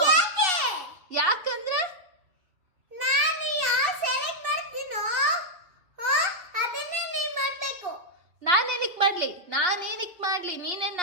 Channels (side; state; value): left; late; 2.9 ms